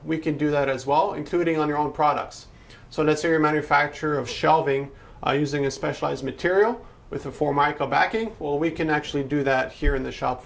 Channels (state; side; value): identical; both; correlation 1.00